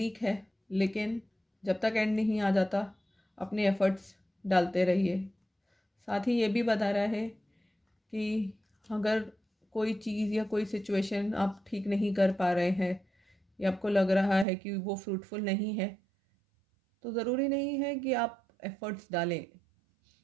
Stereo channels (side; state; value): left; drops out; at 14.5 s